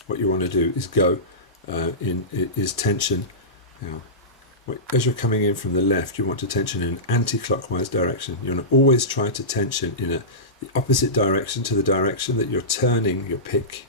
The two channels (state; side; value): normal; both; correlation -0.19